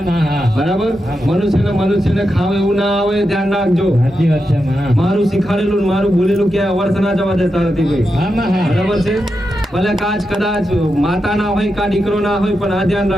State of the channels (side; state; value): both; normal; correlation 0.87